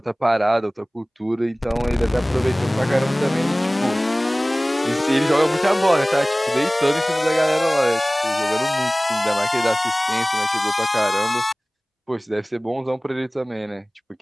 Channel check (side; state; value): both; normal; correlation 0.98